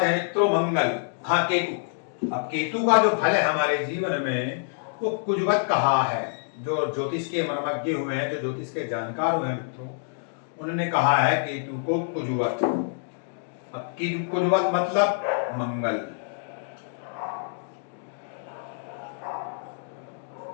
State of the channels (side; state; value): right; silent; digital silence